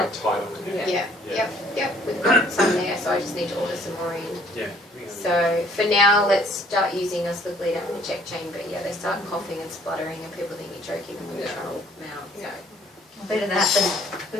tight on the neck. Yeah. Yeah. Yep. We've got some there, so I just need to order some more in. Yeah. So for now, let's start using a slip lead and a check chain. But yeah, they start coughing and spluttering, and people think you're choking them when you're trying to walk them out. So. better that than, But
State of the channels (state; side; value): normal; both; correlation 0.59